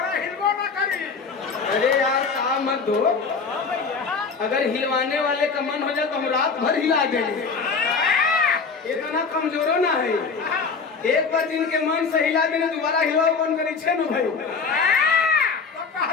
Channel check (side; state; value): right; quieter; 5.0 dB